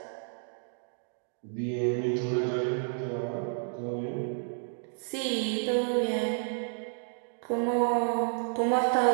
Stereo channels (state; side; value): silent; left; digital silence